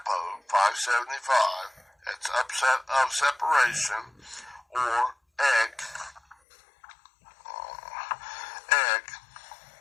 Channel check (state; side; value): drops out; right; at 6.4 s